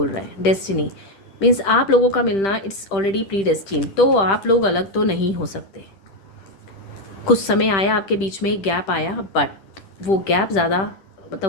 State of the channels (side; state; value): right; late; 10 ms